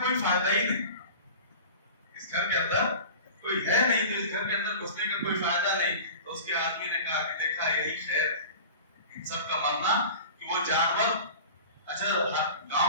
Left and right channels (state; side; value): inverted; both; correlation -0.37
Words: فائدہ ہی نہیں. اس گھر کے اندر کوئی ہے نہیں تو اس گھر کے اندر گھسنے کا کوئی فائدہ نہیں. تو اس کے آدمی نے کہا کہ دیکھا یہی خیر ان سب کا مرنا کہ وہ جانور، اچھا